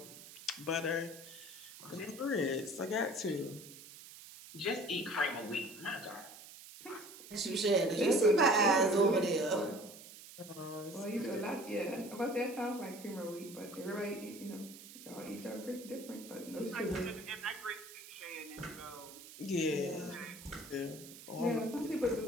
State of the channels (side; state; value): right; noise; hiss, 16 dB below the sound